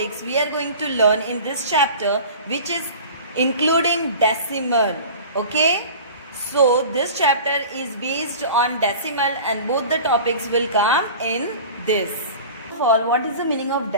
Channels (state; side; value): inverted; both; correlation -0.39